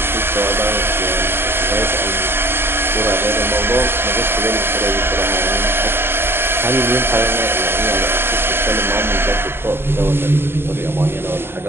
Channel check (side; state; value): left; late; 0.11 ms